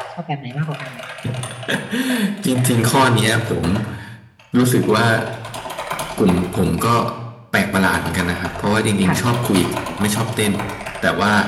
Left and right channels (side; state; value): both; identical; correlation 1.00